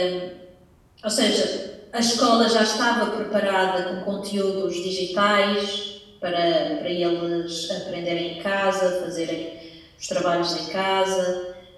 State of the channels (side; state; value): both; identical; correlation 1.00